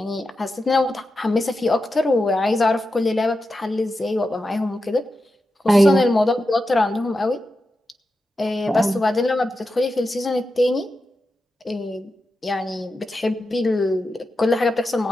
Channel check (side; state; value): both; normal; correlation 0.90